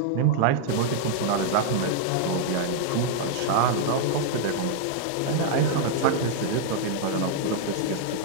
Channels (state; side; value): different; both; correlation -0.01